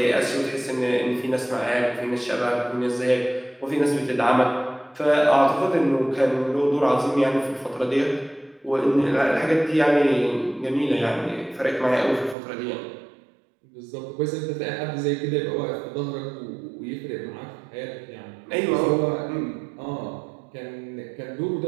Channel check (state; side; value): drops out; left; at 12.4 s